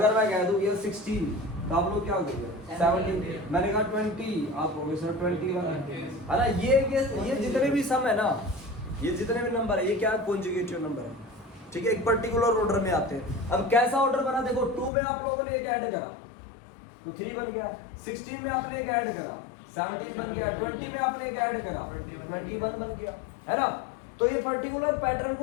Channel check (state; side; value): drops out; right; at 14.9 s